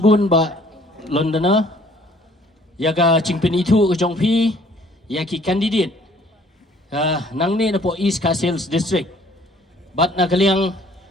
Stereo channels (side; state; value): both; normal; correlation 0.58